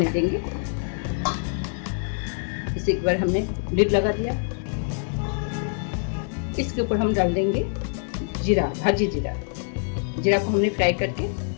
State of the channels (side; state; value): right; silent; digital silence